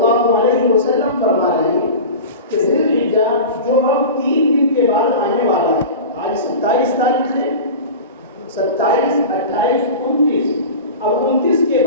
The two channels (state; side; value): inverted; both; correlation -0.31